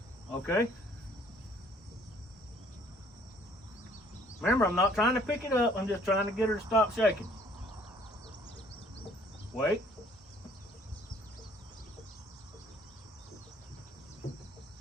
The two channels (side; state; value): both; normal; correlation 0.59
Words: Okay. Remember, I'm not trying to pick it up. I'm just trying to get her to stop shaking. Wait.